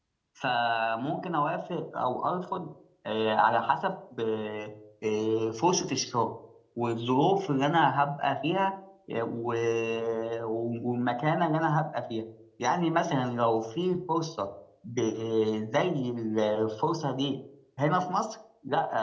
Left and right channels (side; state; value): both; identical; correlation 1.00